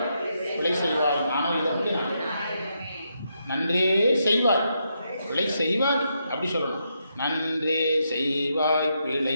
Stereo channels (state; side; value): inverted; both; correlation -0.81